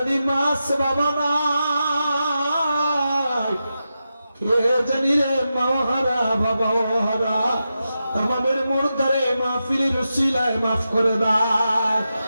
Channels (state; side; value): inverted; both; correlation -0.89